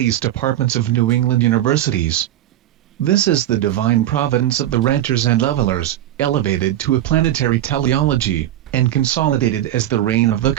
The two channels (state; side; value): quieter; left; 12.9 dB